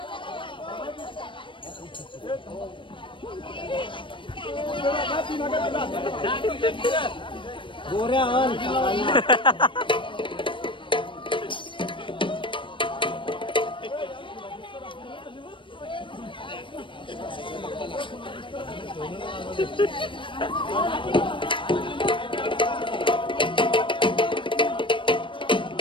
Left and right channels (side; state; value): right; late; 0.24 ms